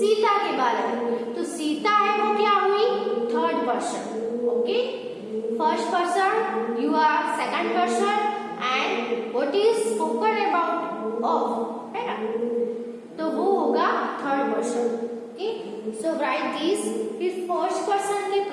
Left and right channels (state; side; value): identical; both; correlation 1.00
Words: के बारे में। तो सीता है वो क्या हुई? Third person. Okay, first person, you are second person, and what is spoken about of, है ना? तो वो होगा third person. Okay, so write this. फिर फर्स्ट पर्सन के